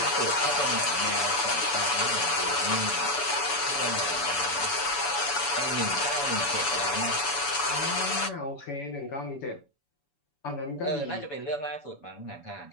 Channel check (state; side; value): late; right; 7.0 ms